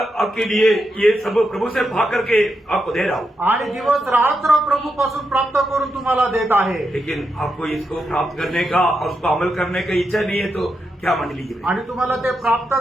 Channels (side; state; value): both; normal; correlation 0.85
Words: आपके लिए ये सब प्रभु से भाग करके आपको दे रहा हूँ, आणि दिवस रात्र प्रभू पासून प्राप्त करून तुम्हाला देत आहे। लेकिन आपको इसको प्राप्त करने का और उसको अमल करने का इच्छा नहीं है तो क्या मंडली की? आणि तुम्हाला ते प्राप्त